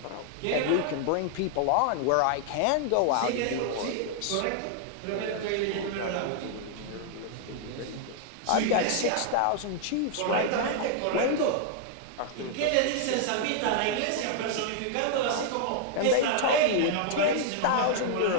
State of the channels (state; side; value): different; both; correlation 0.00